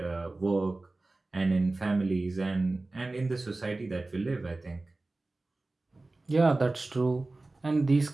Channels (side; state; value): left; quieter; 3.1 dB